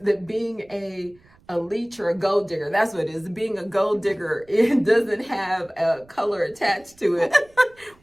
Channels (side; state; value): right; noise; rumble, 30 dB below the sound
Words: being a leech or a gold digger, that's what it is. Being a gold digger, it doesn't have a color attached to it,